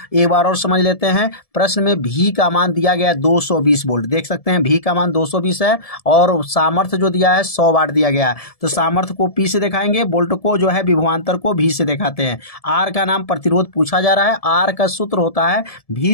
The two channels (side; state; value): right; late; 1.7 ms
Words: एक बार और समझ लेते हैं। प्रश्न में भी का मान दिया गया है 220 वोल्ट, देख सकते हैं भी का मान 220 है, और सामर्थ्य जो दिया है 100 वाट दिया गया है। तो सामर्थ्य को पी से दिखाएंगे, वोल्ट को जो है विभवांतर को भी से दिखाते हैं। आर का नाम प्रतिरोध पूछा जा रहा है। आर का सूत्र होता है